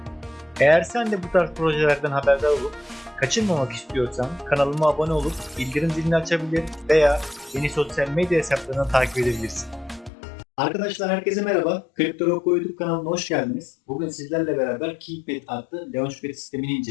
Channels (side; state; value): right; drops out; at 10.1 s